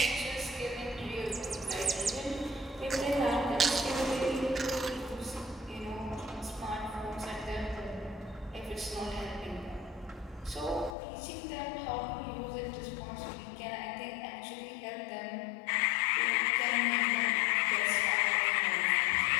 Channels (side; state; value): right; drops out; at 11.0 s